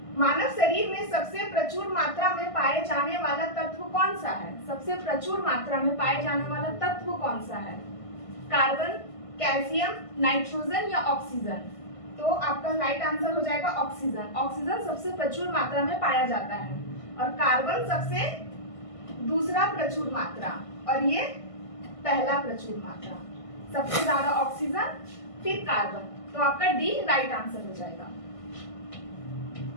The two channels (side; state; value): right; late; 1.5 ms